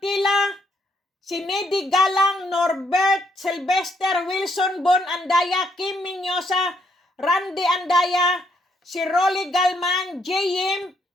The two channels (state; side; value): normal; both; correlation 0.73